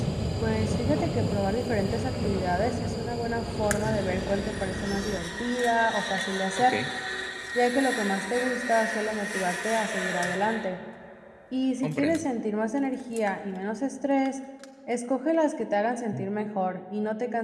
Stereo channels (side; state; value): both; identical; correlation 1.00